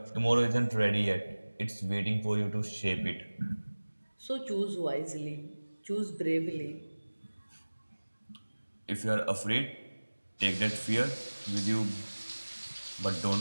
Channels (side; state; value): both; inverted; correlation -1.00